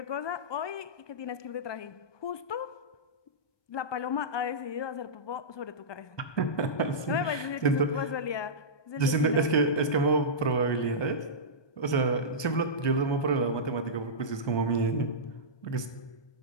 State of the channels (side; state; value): right; late; 1.2 ms